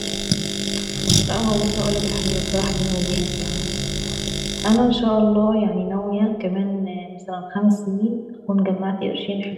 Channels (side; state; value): both; identical; correlation 1.00